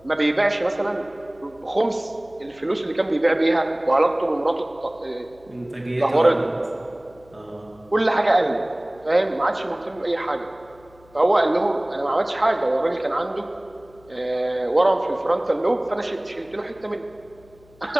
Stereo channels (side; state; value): left; noise; hum, 28 dB below the sound